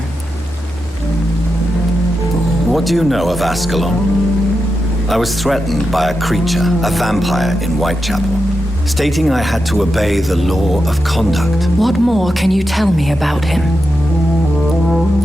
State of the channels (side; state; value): both; normal; correlation 0.88